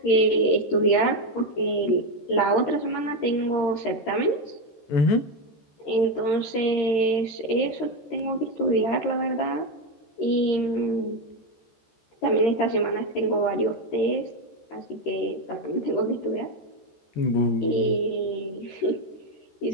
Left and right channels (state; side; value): late; right; 13 ms